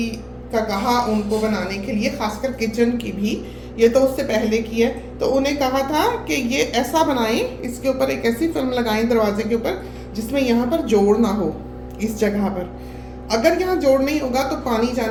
का कहा उनको बनाने के लिए, खासकर किचन की भी, ये तो उससे पहले की है, तो उन्हें कहा था कि ये ऐसा बनाएं, इसके ऊपर एक ऐसी फिल्म लगाएं दरवाजे के ऊपर जिसमें यहाँ पर जोड़ ना हो। इस जगह पर अगर यहाँ जोड़ नहीं होगा तो पानी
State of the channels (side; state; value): both; identical; correlation 1.00